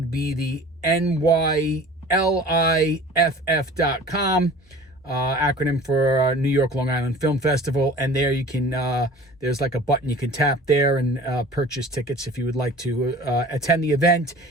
be the NYLIFF.com, acronym for New York Long Island Film Festival. And there you can, there's like a button you can tap there and purchase tickets if you would like to attend the event.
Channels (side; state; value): both; normal; correlation 0.43